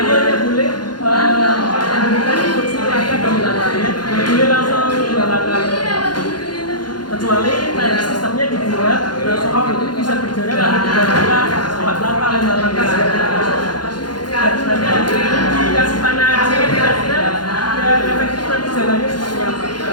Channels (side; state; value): right; late; 0.71 ms